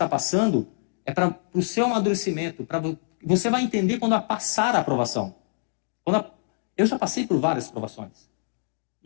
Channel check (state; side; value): silent; right; digital silence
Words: passando é para o seu amadurecimento. Você vai entender quando passar a aprovação. Eu já passei por várias provações.